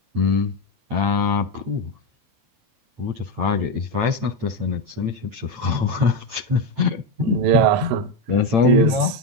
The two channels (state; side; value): late; left; 8.9 ms